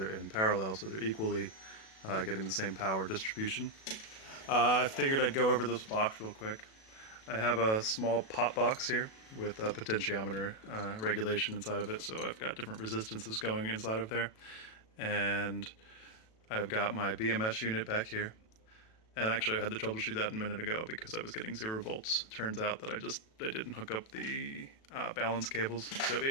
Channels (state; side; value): late; right; 37 ms